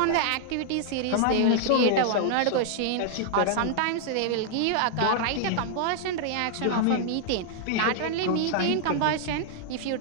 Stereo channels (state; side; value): different; both; correlation -0.01